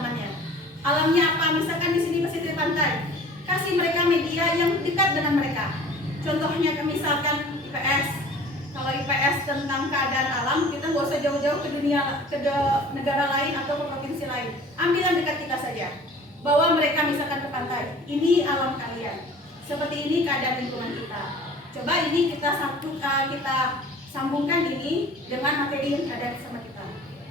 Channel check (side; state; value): both; normal; correlation 0.46